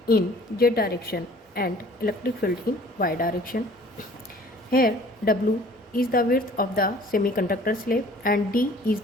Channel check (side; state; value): both; normal; correlation 0.51